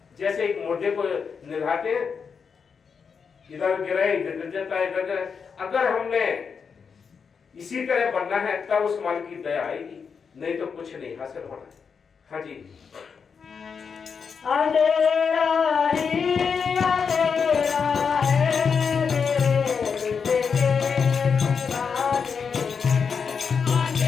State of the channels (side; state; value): right; quieter; 6.0 dB